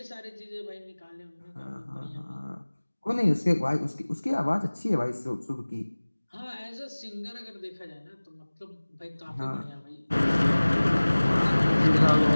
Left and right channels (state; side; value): inverted; both; correlation -1.00